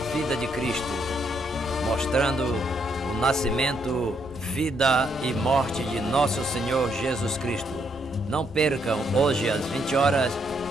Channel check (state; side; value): normal; both; correlation 0.74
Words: de Cristo, mostrando o nascimento, vida e morte de Nosso Senhor Jesus Cristo. Não percam hoje às 20 horas